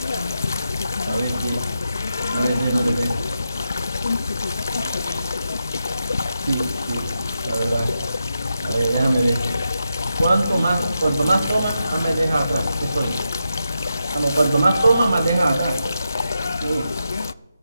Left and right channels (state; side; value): inverted; both; correlation -0.87